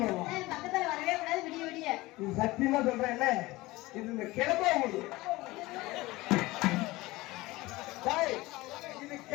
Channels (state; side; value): quieter; right; 20.1 dB